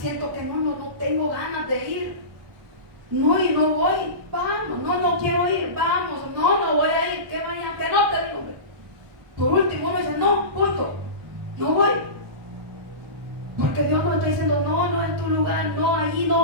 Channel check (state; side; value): late; left; 1.2 ms